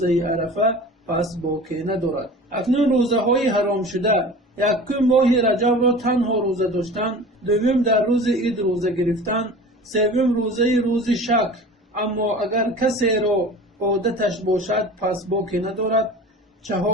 عرفه پس باکی ندارد. اکنون روزه های حرام شده: یکم ماه رجب را تنها روزه داشتن. دوم در روز عید روزه گرفتن. سوم روز شک اما اگر کسی را عادتش باشد پس باکی ندارد.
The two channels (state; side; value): normal; both; correlation 0.38